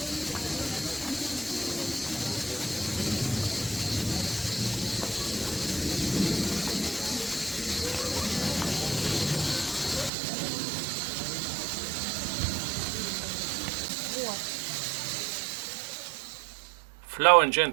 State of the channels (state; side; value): drops out; left; at 10.1 s